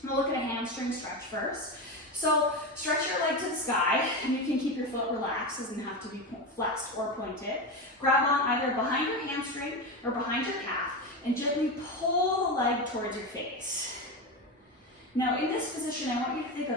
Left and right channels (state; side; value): normal; both; correlation 0.18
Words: We'll look at a hamstring stretch first. So stretch your leg to the sky, and you can keep your foot relaxed, doesn't have to be flexed or pointed. Grab on either behind your hamstring or behind your calf, and gently pull the leg towards your face. Now in this position, I want you to think